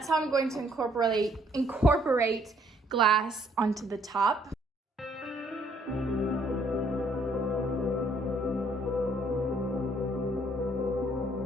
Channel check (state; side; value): normal; both; correlation 0.66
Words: how I'm going to incorporate glass onto the top.